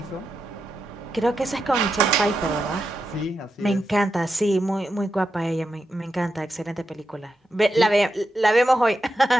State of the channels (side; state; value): both; normal; correlation 0.87